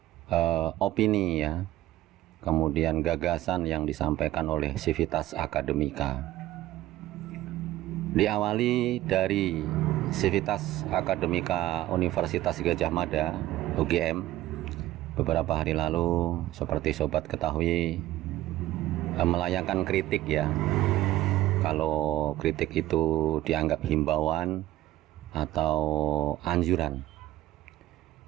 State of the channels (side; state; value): left; quieter; 15.2 dB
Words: opini ya, kemudian gagasan yang disampaikan oleh Civitas Academica. Diawali dari Civitas Academica Universitas Gadjah Mada (UGM). Beberapa hari lalu, seperti sobat ketahui, melayangkan kritik ya. Kalau kritik itu dianggap himbauan atau anjuran,